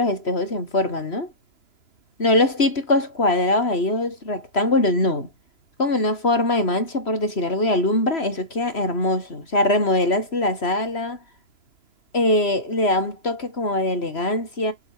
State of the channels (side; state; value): right; late; 3.0 ms